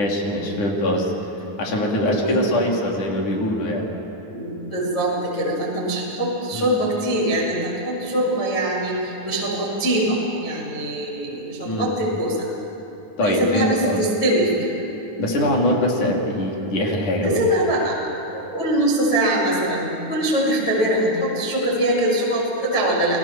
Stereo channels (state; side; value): late; right; 9.7 ms